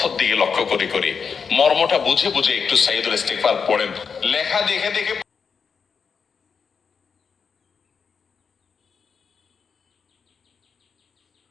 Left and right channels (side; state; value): right; quieter; 6.0 dB